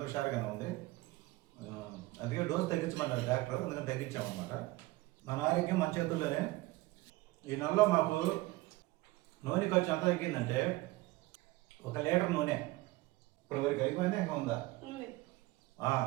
హుషారుగానే ఉంది. అందుకే డోసు తగ్గించమన్నారు డాక్టర్, అందుకని తగ్గించామన్నమాట. మన ఆరోగ్యం మన చేతుల్లోనే. ఈ నెలలో మాకు నూనె ఖర్చు ఎంత తగ్గిందంటే, 1 లీటర్ నూనె ఇప్పుడు వరకు అయిపోయిందా, ఇంకా ఉందా?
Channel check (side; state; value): left; quieter; 20.1 dB